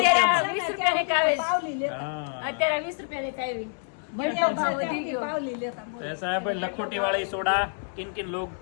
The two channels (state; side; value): silent; right; digital silence